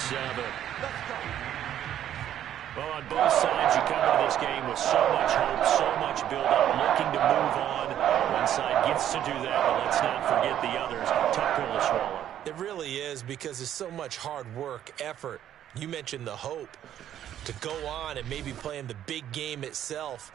Well, on both sides, you come into this game with so much hope, so much build-up, looking to move on. One side gets to do that, but let's not forget the others. Tough pill to swallow. It really is, because there's so much hard work, effort. You mentioned the hope to go on and maybe play in the big game itself.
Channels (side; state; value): left; quieter; 11.0 dB